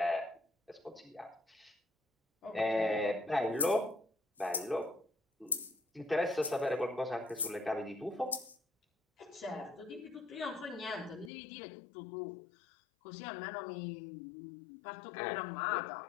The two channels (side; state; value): right; drops out; at 11.3 s